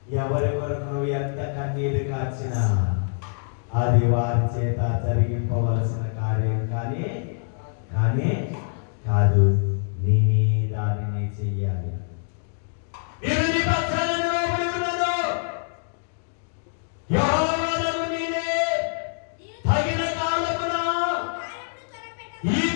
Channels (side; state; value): right; silent; digital silence